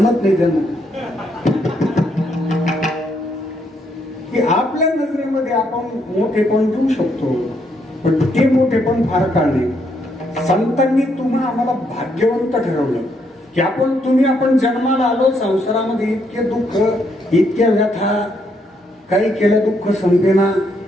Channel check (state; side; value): normal; both; correlation 0.74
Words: नाही त्यांना. की आपल्या नजरेमध्ये आपण मोठेपण देऊ शकतो, पण ते मोठेपण फार काळ नाही. संतांनी तुम्हा आम्हाला भाग्यवंत ठरवलं की आपण जन्माला आलो, संसारामध्ये इतके दुःख, इतक्या व्यथा, काही केलं दुःख संपेना,